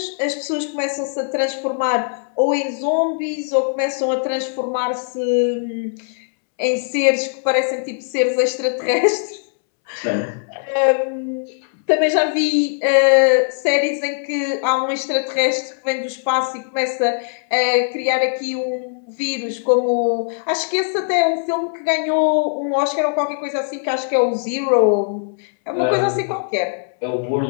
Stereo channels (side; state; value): right; silent; 66 dB below the other